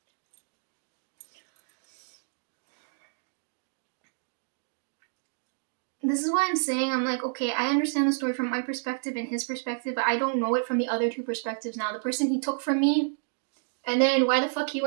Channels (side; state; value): left; silent; digital silence